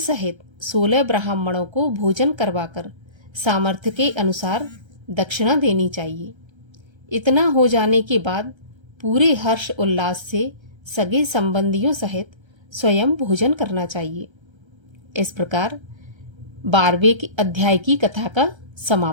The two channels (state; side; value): late; left; 1.3 ms